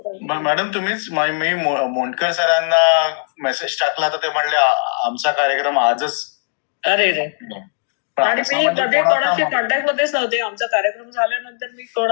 मॅडम तुम्हीच मी मोंडकर सरांना मेसेज टाकला तर ते म्हणले आमचा कार्यक्रम आजच." अरे रे. पण आणि असं मी म्हणजे मध्ये कोणाचा कोणाशी मग- कॉन्टॅक्ट मध्येच नव्हते. आमचा कार्यक्रम झाल्यानंतर मी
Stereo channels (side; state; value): right; silent; digital silence